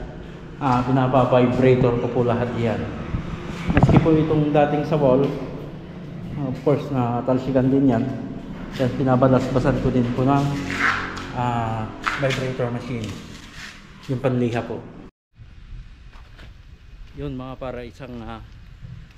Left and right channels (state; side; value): identical; both; correlation 1.00